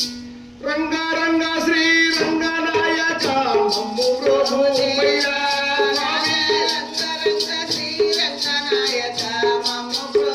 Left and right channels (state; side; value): identical; both; correlation 1.00